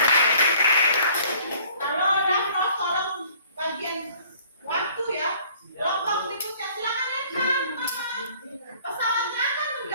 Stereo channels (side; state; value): both; inverted; correlation -0.55